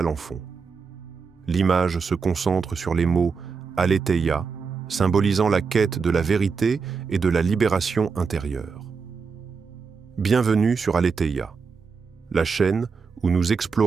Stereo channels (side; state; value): left; quieter; 5.3 dB